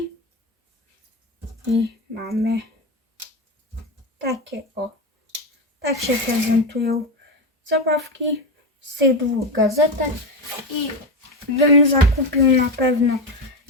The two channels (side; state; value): both; normal; correlation 0.15